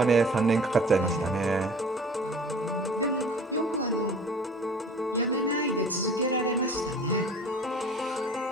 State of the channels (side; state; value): both; normal; correlation 0.45